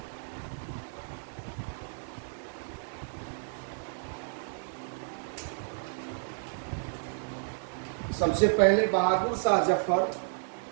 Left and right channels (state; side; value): silent; left; digital silence